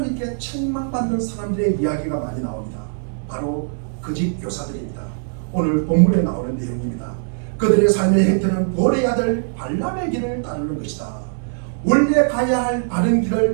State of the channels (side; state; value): left; silent; 65 dB below the other